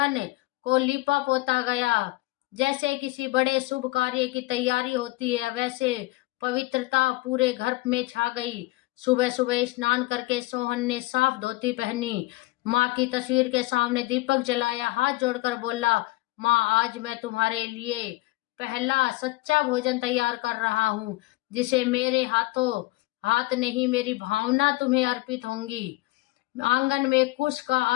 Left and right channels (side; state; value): right; quieter; 20.2 dB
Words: को लीपा पोता गया। जैसे किसी बड़े शुभ कार्य की तैयारी होती है, वैसे पवित्रता पूरे घर में छा गई। सुबह सुबह स्नान करके सोहन ने साफ धोती पहनी, माँ की तस्वीर के सामने दीपक जलाया, हाथ जोड़कर बोला, माँ, आज मैं तुम्हारे लिए पहला सच्चा भोजन तैयार कर रहा हूँ, जिसे मेरे हाथ नहीं, मेरी भावना तुम्हें अर्पित होंगी। आंगन में कुश का